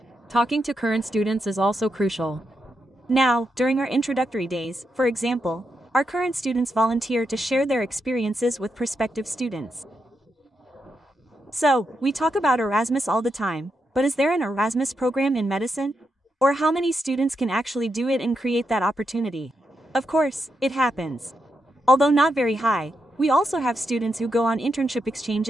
Talking to current students is also crucial. Now, during our introductory days, for example, our current students volunteer to share their experiences with prospective students. So, we talk about Erasmus all the time, but is there an Erasmus program in medicine? Or how many students can actually do it and create that opportunity? Of course, it happens. Although not very high, we also have students who go on internship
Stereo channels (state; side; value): normal; both; correlation 0.84